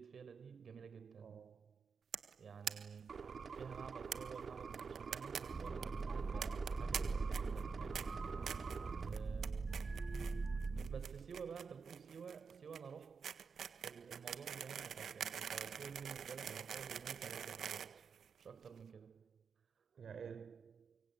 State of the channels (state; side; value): quieter; left; 5.1 dB